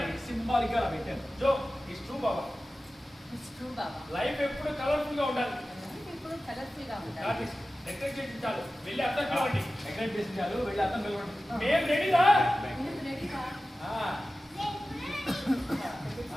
జో ఇట్స్ ట్రూ బాబా. లైఫ్ ఎప్పుడు కలర్ఫుల్ గా ఉండాలి. డెకరేట్ చేసి చాలు, వెళ్ళి అర్థం కావండి. మేము రెడీరా?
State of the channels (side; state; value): both; normal; correlation 0.95